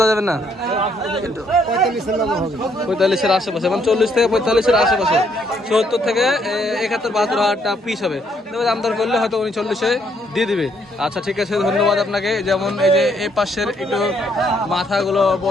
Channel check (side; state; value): both; normal; correlation 0.70